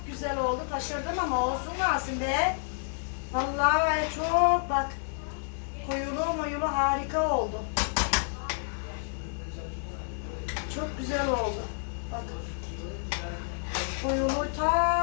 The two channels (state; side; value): silent; right; 58 dB below the other